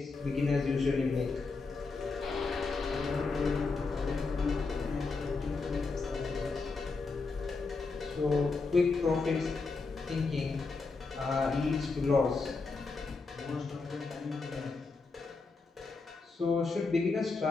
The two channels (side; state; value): right; quieter; 4.1 dB